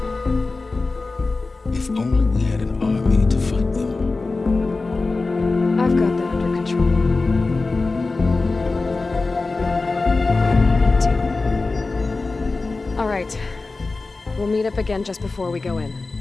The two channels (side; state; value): right; quieter; 3.6 dB